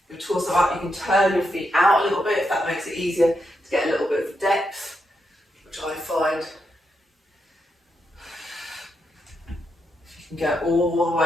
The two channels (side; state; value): both; normal; correlation 0.83